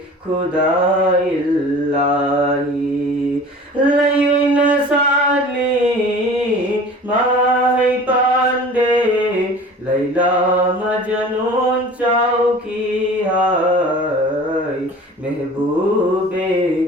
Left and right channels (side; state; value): both; normal; correlation 0.42